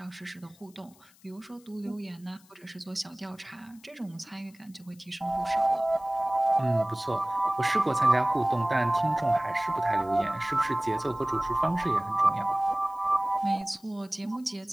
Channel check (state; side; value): noise; left; hiss, 28 dB below the sound